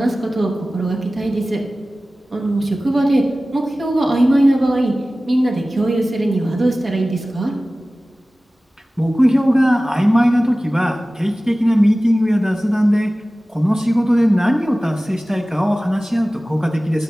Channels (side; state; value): both; normal; correlation 0.97